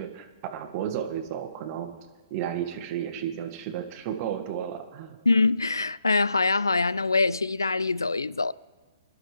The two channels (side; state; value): both; inverted; correlation -0.78